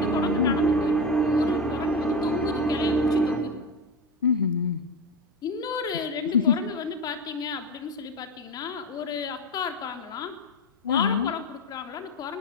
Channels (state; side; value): normal; both; correlation 0.20